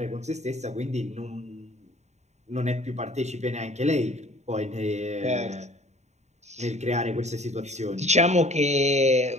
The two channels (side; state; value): left; late; 0.33 ms